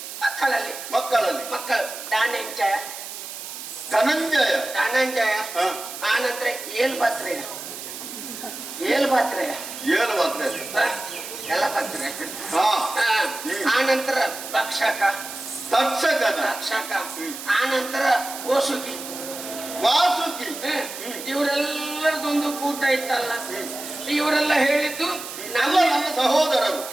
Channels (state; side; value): noise; right; hiss, 10 dB below the sound